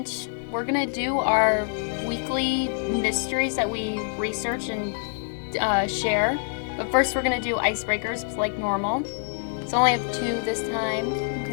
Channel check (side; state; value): right; silent; 61 dB below the other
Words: we're going to do our weekly mysteries that we research and share. But first we're going to do icebreakers like normal. So I only have 2 this time.